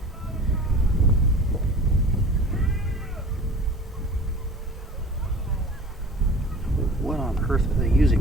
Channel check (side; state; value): both; normal; correlation 0.42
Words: What on earth are they